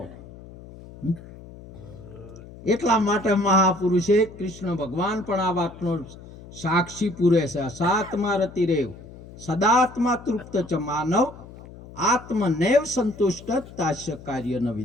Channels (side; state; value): left; noise; hum, 17 dB below the sound